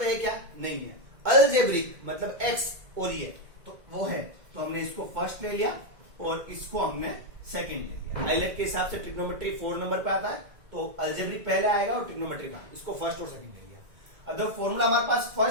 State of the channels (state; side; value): late; left; 1.9 ms